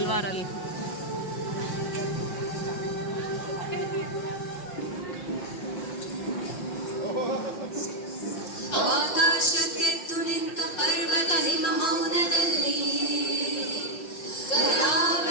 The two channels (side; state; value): right; late; 5.6 ms